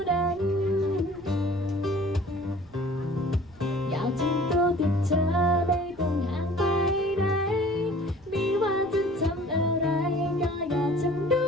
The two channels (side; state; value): right; noise; rumble, 26 dB below the sound